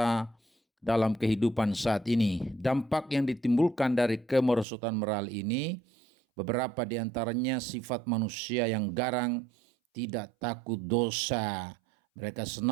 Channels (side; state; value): left; drops out; at 4.7 s